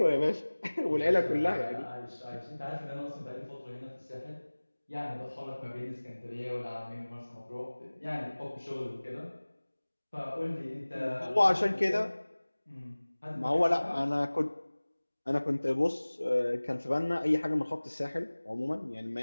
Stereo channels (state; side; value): inverted; both; correlation -1.00